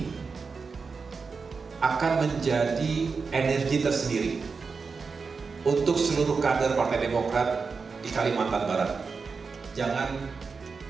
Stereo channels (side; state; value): left; quieter; 4.9 dB